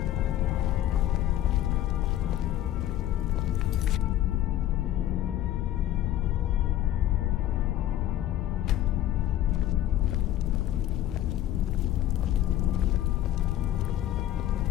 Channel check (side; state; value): right; quieter; 12.9 dB